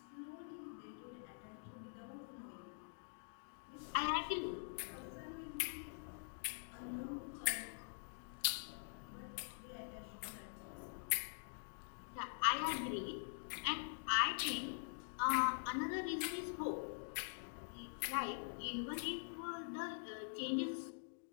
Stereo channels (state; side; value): silent; right; digital silence